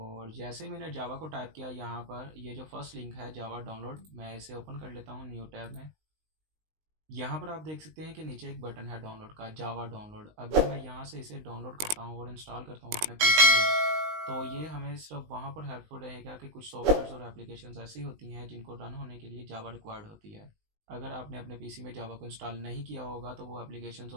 जैसे ही मैंने जावा को टाइप किया, यहाँ पर ये जो फर्स्ट लिंक है जावा डाउनलोड, मैं इसे ओपन कर लेता हूँ न्यू टैब में। यहाँ पर आप देख सकते हैं कि नीचे एक बटन है डाउनलोड का, जावा डाउनलोड। अगर मैं यहाँ से इसे डाउनलोड करता हूँ और इंस्टॉल करता हूँ अपने पीसी में, तो ये हमें सिर्फ वहाँ पर हेल्पफुल रहेगा कि कुछ सॉफ्टवेयर और एप्लीकेशंस ऐसी होती हैं जिनको रन होने के लिए जावा रिक्वायर्ड होती है। अगर आपने अपने पीसी में जावा को इंस्टॉल नहीं किया होगा तो वो एप्लीकेशंस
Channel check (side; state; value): left; late; 19 ms